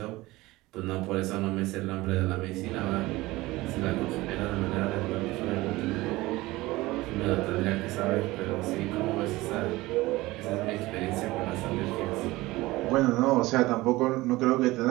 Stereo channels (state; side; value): quieter; left; 19.5 dB